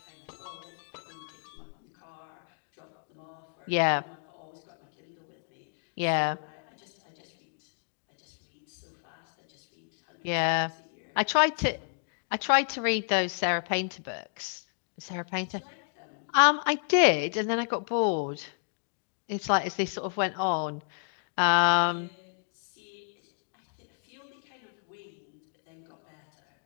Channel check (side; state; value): right; silent; digital silence